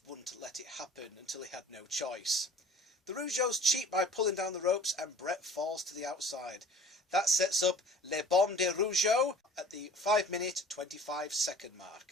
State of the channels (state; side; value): normal; both; correlation 0.46